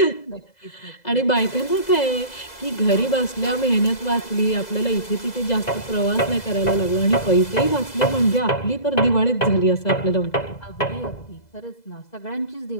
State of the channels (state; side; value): late; right; 2.0 ms